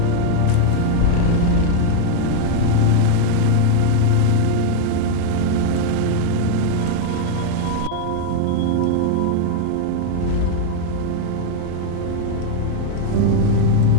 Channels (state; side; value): different; both; correlation 0.00